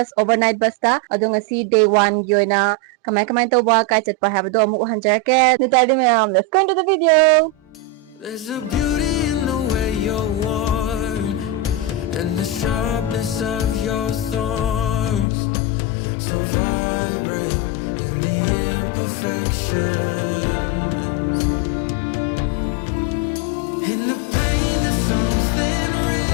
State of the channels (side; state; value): right; drops out; at 15.2 s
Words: overnight bus ta adung asi day 1 yoina kamay tawba kai chatpa habado amuk hanjarake nitadi ma'am. Let's go into the video. There's a beauty in the way you're worn and the sharpness of your thorns, so vibrant in the imperfections. In the pain there's something